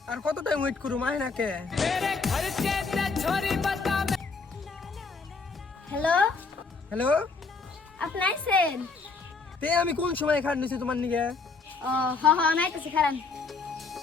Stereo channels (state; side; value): quieter; right; 4.4 dB